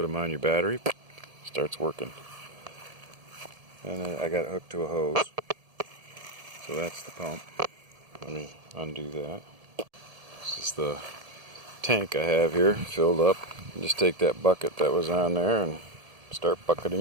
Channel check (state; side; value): late; left; 1.7 ms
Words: them on your battery. Starts working. And I got it hooked to a hose. So that's the pump. Let me undo that. This is the tank I have here filled up. Just take that bucket that was on there and start